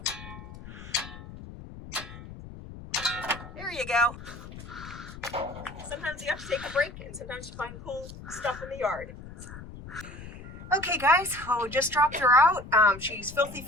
There you go. Sometimes you have to take a break and sometimes you find cool stuff in the yard. Okay guys, well, we just dropped her out. She's filthy,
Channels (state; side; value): noise; left; rumble, 14 dB below the sound